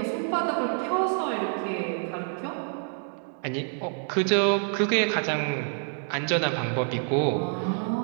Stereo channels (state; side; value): silent; left; 60 dB below the other